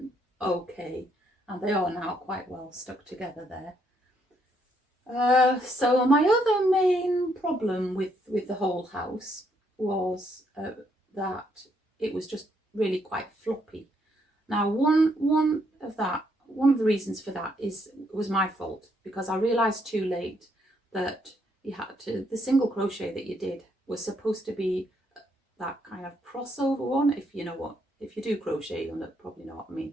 okay. And they are now quite well stuck together there. So my other main problem with the whole house was that it was just really quite floppy. Now, one of the reasons for that was my fault, because I realised too late that the single crochet that you did was supposed to be that kind of crossover one. If you do crochet, you'll probably know what I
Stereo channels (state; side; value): normal; both; correlation 0.73